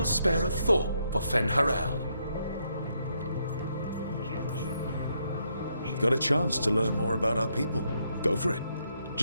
spare a thought for Fen'Harel. Got a chance to learn more about our people. Go for it.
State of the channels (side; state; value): both; inverted; correlation -0.77